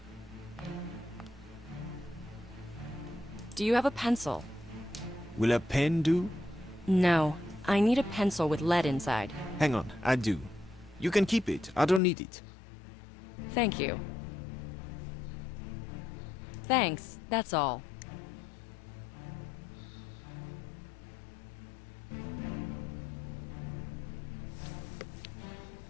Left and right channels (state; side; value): drops out; right; at 12.0 s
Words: Do you have a pencil? Will a pen do? No. I need a pencil with lead inside. Hang on, I do. You can keep it. I don't need it. Thank you. Thanks, that's all.